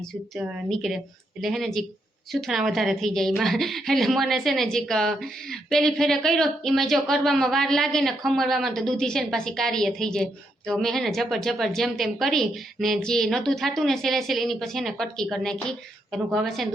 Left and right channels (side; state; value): both; normal; correlation 0.79